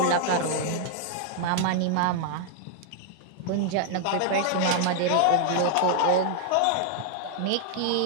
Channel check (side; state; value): both; different; correlation 0.00